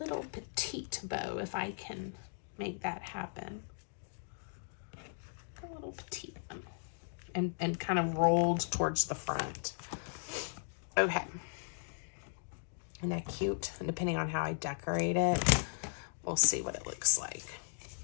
petite bow if I can make that happen. A little petite one. And kind of rolled towards the front. Okay. Isn't that cute? And depending on how I decorate it, we'll see what it looks like.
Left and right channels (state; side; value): silent; right; digital silence